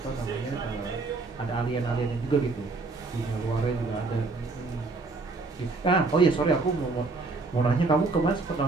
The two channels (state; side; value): quieter; left; 3.7 dB